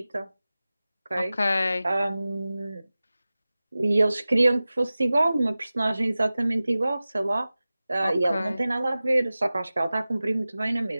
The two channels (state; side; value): inverted; both; correlation -0.96